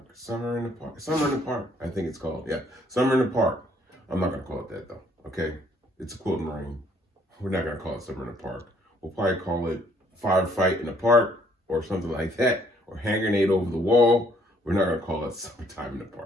Summer in the Park, I think it's called. Yeah, Summer in the Park. I'm not gonna call it that though, okay? It's a Quilt Marine. We're not gonna call it Summer in the Park. We'll probably call it Firefight in the Park or something like that, or Hand Grenade over the Wall. We're not gonna call it Summertime in the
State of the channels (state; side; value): normal; both; correlation 0.65